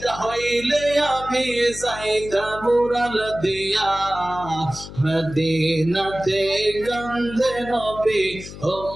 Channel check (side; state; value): left; noise; hum, 13 dB below the sound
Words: হইলে আমি যাইতাম উড়াল দিয়া মদিনাতে কান্দে নবী